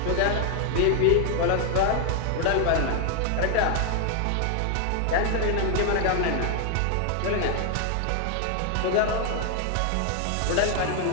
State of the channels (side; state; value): both; different; correlation 0.00